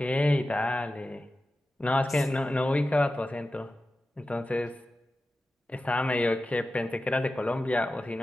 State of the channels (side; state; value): both; normal; correlation 0.93